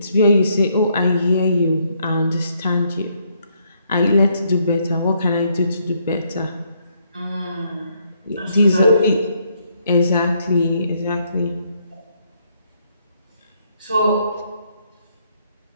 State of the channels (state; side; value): inverted; both; correlation -0.72